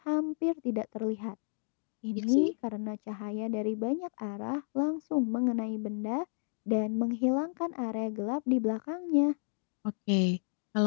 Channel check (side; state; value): right; silent; 56 dB below the other